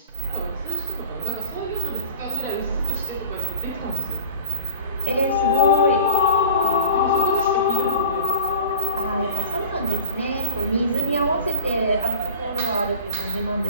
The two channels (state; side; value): inverted; both; correlation -0.40